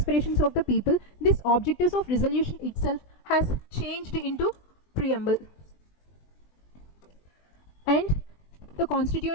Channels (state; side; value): late; right; 20 ms